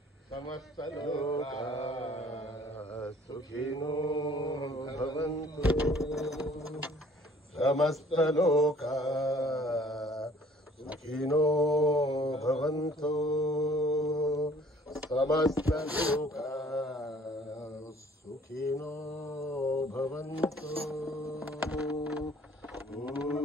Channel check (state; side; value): normal; both; correlation 0.56